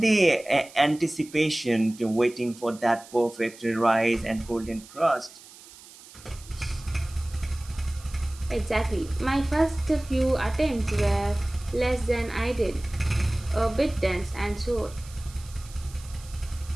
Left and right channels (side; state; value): right; noise; hiss, 20 dB below the sound